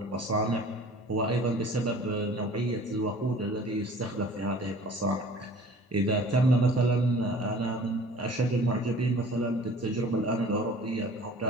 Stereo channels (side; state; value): both; normal; correlation 0.47